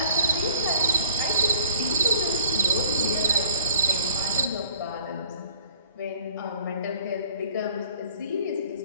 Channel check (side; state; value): both; inverted; correlation -0.52